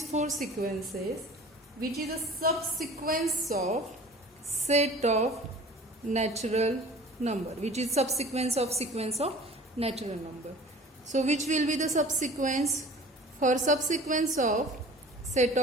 four sequences, which is a subsequence of set of natural number, which is subsequence of sequence of natural number. So which will be the subsequence? For subsequence of set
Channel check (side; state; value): both; normal; correlation 0.44